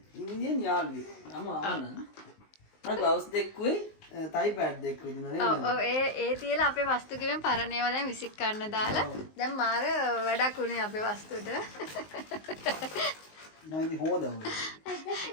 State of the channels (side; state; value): right; late; 19 ms